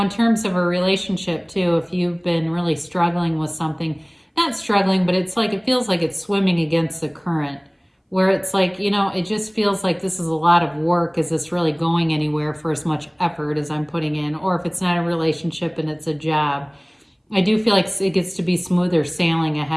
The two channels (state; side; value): identical; both; correlation 1.00